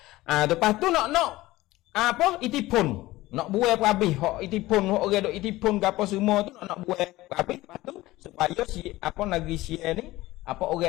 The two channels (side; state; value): right; quieter; 18.0 dB